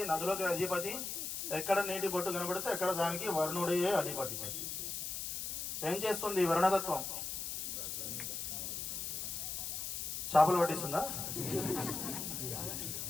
నదులకి అధిపతి. ఎక్కడ నీటి బొట్టు కనబడితే ఎక్కడ దానికి వరుణుడే అధిపతి. ఏం చేస్తుంది వరుణతత్వం? చేపలు పట్టిస్తుందా?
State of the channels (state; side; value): noise; left; hiss, 4 dB below the sound